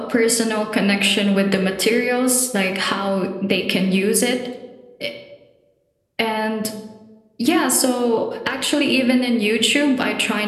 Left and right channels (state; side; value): identical; both; correlation 1.00